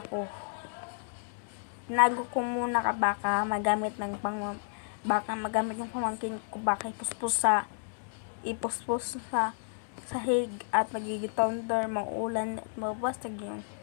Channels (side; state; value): right; silent; digital silence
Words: Tinago ko muna ka baka magamit ng pamangkin ko, baka ipuspos sa sahig at magiging thunder, maulan at